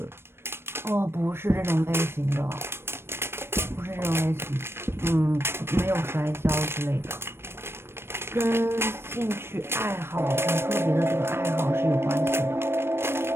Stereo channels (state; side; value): late; left; 0.12 ms